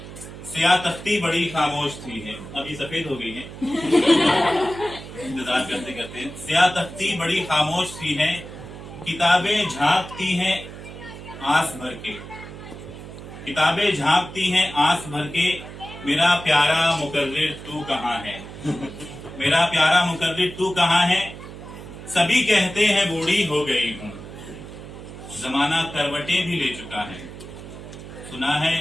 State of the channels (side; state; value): right; noise; hum, 13 dB below the sound